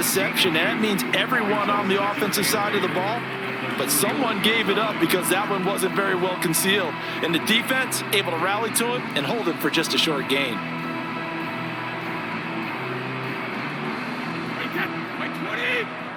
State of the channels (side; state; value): both; identical; correlation 1.00